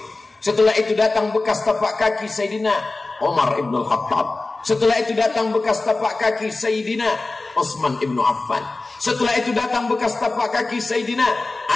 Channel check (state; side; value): quieter; right; 3.3 dB